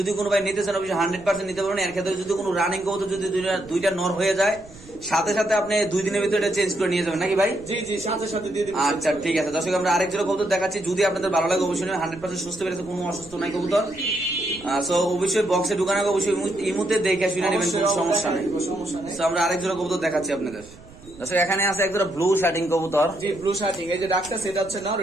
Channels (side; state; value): right; noise; rumble, 21 dB below the sound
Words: কোনো ভাই নিতে চান অবশ্যই 100% নিতে পারবেন। এর ক্ষেত্রে যদি কোনো রানিং কবুতর যদি দুইটা নর হয়ে যায়, সাথে সাথে আপনি 2 দিনের ভিতরে এটা চেঞ্জ করে নিয়ে যাবেন নাকি ভাই? জি জি, সাথে সাথে দিয়ে দিবেন। আচ্ছা ঠিক আছে দর্শক, আমরা আরেক জোড়া কবুতর দেখাচ্ছি। যদি আপনাদের ভালো লাগে অবশ্যই 100% সুস্থ বেরোতে, কোনো অসুস্থ নাই কবুতর। সো অবশ্যই বক্সে ঢুকানো অবশ্যই ইমুতে দেখে শুনে নেবেন, কোনো সমস্যা নেই। তো আমরা আরেক জোড়া কবুতর দেখাচ্ছি আপনাদের। দর্শক এখানে আছে এক জোড়া ব্লু শার্টিং কবুতর। জি, ব্লু শার্টিং। এই যে ডাকটা, সেটা হচ্ছে নর,